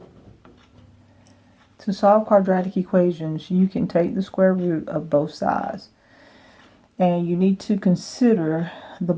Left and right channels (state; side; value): identical; both; correlation 1.00